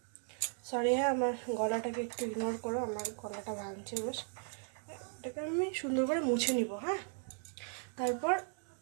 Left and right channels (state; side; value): silent; left; 53 dB below the other